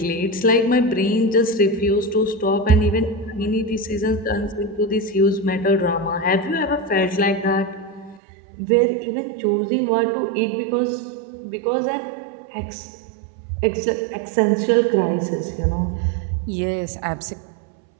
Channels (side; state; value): left; drops out; at 8.2 s